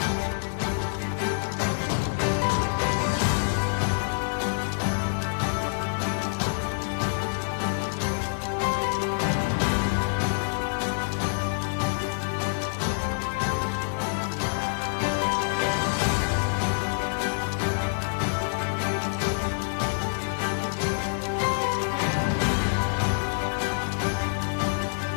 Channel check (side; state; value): right; silent; digital silence